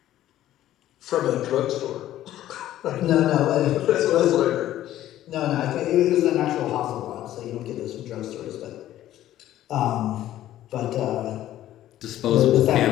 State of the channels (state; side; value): quieter; right; 13.2 dB